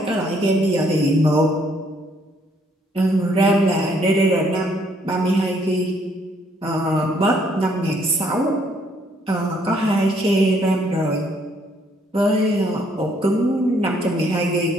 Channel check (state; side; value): normal; both; correlation 0.67